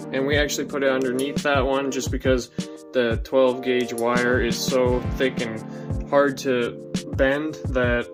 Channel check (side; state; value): both; identical; correlation 1.00